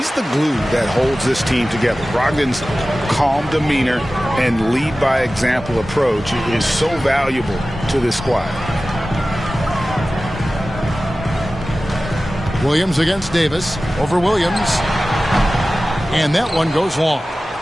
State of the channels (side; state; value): both; normal; correlation 0.96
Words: the glue that holds this team together. Brogdon's calm demeanor and lead by example approach is so valuable to this squad. Williams against Davis. Over Williams. And that one goes long.